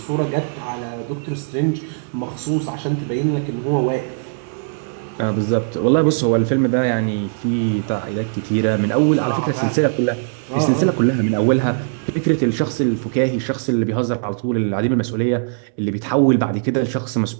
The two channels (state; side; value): silent; left; digital silence